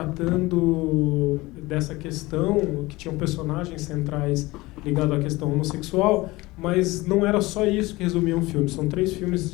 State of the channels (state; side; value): quieter; right; 20.8 dB